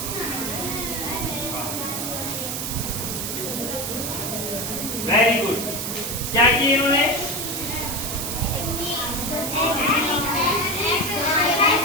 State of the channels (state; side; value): noise; right; hiss, 3 dB below the sound